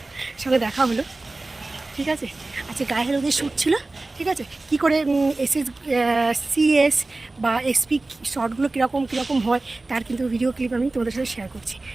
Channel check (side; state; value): left; quieter; 3.1 dB